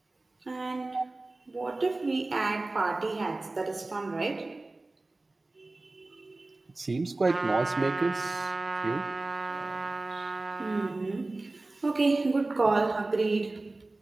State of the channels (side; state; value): left; quieter; 3.1 dB